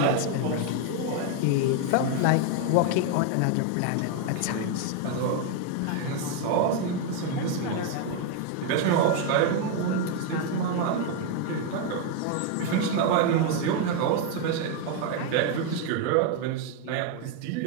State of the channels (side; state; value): both; different; correlation 0.01